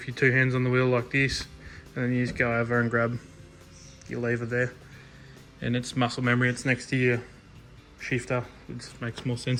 you're two hands on the wheel like this, and then you just go over and grab your lever there, and it's muscle memory, it's next to your shifter. It just makes more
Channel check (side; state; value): both; identical; correlation 1.00